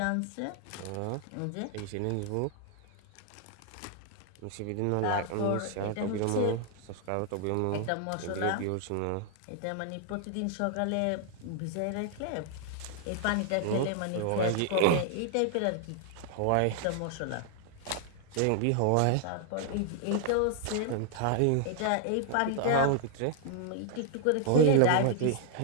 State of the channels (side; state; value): both; different; correlation 0.00